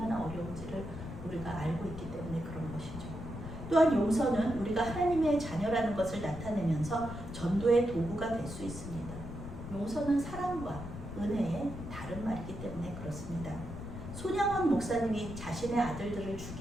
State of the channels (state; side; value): noise; left; rumble, 9 dB below the sound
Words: 어려운지를 우리가 알고 있기 때문에 그런 것이죠. 또한 용서는 우리가 하나님의 자녀라는 것을 나타내면서 전도의 도구가 될 수 있습니다. 용서는 사랑과 은혜의 다른 말이기 때문에 그렇습니다. 손양원 목사님이 자신의 아들들을